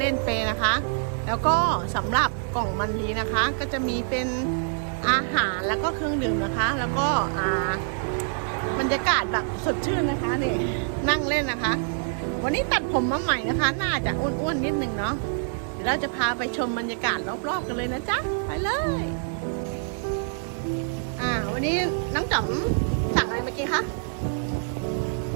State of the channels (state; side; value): silent; left; digital silence